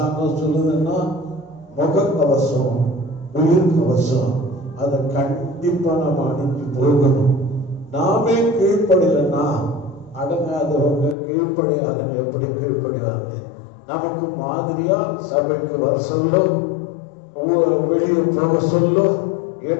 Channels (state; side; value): drops out; right; at 11.2 s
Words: சொல்லுதுன்னா முகக்கவசம் உயிர் கவசம் அதை கண்டிப்பா நம்ம அணிஞ்சு போகணும். நாமே கீழ்ப்படியலன்னா அடங்காதவங்க கீழ்ப்படியாதவங்க எப்படி கீழ்ப்படிவாங்க? நமக்கு மாதிரியா சபைக்கு வர சொல்லோ வெளியே போக சொல்லோ